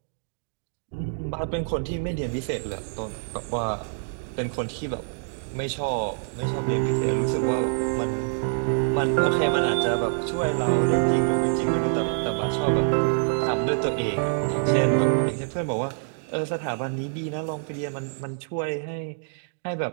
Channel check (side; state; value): left; silent; digital silence